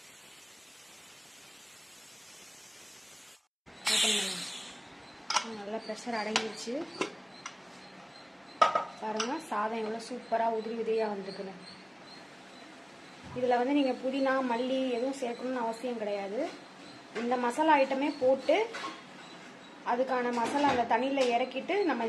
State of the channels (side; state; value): both; identical; correlation 1.00